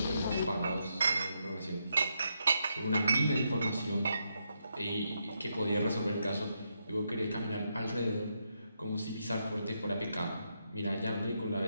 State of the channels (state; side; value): inverted; both; correlation -0.81